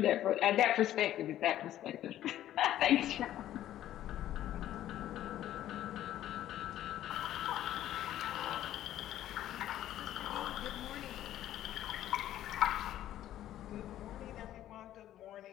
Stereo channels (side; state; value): right; quieter; 12.6 dB